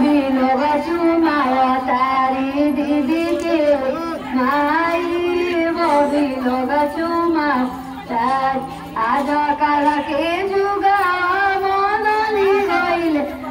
लोग चुमाया तारी दीदी के माई बबी लोग चुमा तार आज काल के जुगा बदली गईले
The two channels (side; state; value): both; identical; correlation 1.00